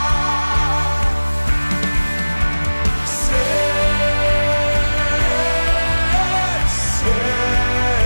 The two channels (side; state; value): both; inverted; correlation -1.00